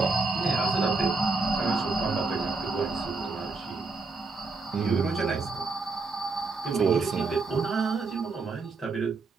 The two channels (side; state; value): left; quieter; 4.0 dB